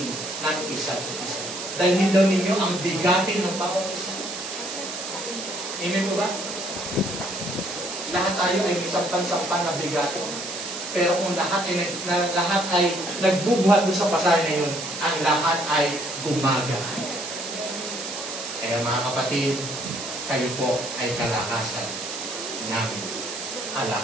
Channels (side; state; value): right; noise; hiss, 7 dB below the sound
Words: ng isa't isa. Dalhin daw ninyo ang bigatin ng bawat isa. Amen po ba? Lahat tayo ay sampan-sampan na bigatin. Pero kung lahat ay nagbubuhat doon sa pasanin na yun, ang lahat ay gumagaan. Kaya mga kapatid, kayo po ay kalakasan namin.